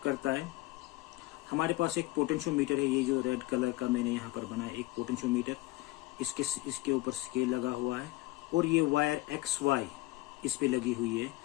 करता है। हमारे पास एक पोटेंशियोमीटर है, ये जो रेड कलर का मैंने यहाँ पर बनाया एक पोटेंशियोमीटर, इसके ऊपर स्केल लगा हुआ है और ये वायर XY इस पे लगी हुई है।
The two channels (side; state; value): right; quieter; 19.6 dB